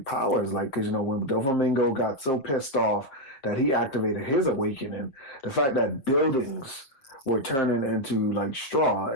powers. Like, because when Doflamingo got so pissed off that he activated his awakening, the fact that buildings were turning into like straw,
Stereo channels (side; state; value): right; late; 7.4 ms